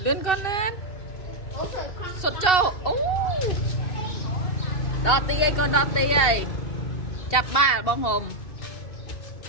con lên sốt trâu đo ti ấy con đo ti ấy chặt ba bông hồng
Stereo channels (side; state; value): right; late; 2.7 ms